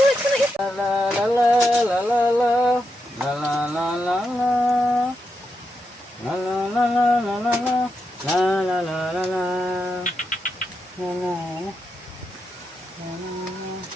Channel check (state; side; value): normal; both; correlation 0.85